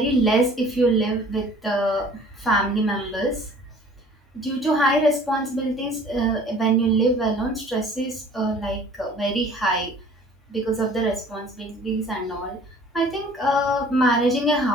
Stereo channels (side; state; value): both; normal; correlation 0.50